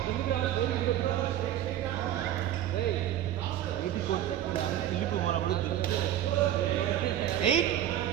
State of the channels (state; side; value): quieter; left; 11.8 dB